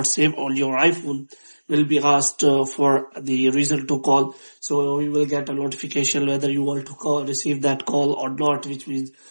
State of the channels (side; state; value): both; inverted; correlation -1.00